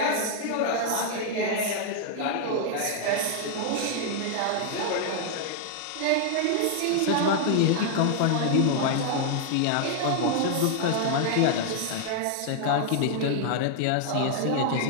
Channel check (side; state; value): both; different; correlation 0.00